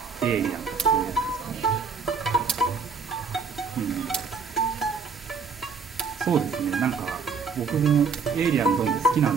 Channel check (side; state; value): left; quieter; 5.3 dB